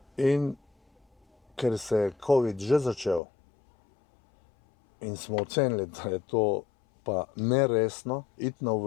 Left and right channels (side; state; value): right; drops out; at 3.2 s